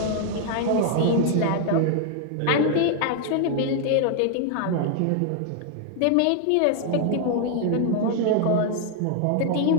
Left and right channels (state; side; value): different; both; correlation 0.00